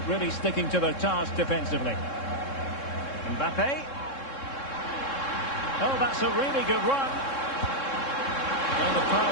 really sticking to their task defensively. Mbappe. Oh, that's a really good run. Well, the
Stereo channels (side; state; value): right; late; 3.7 ms